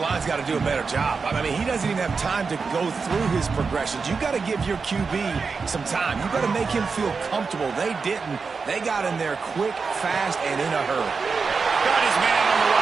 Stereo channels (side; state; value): left; quieter; 4.9 dB